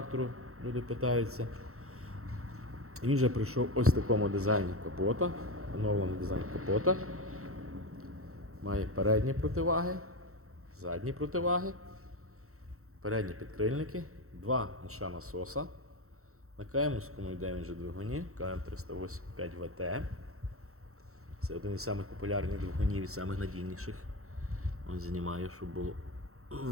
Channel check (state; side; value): late; left; 0.63 ms